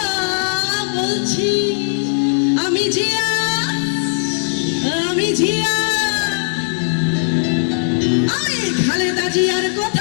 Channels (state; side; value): silent; right; 67 dB below the other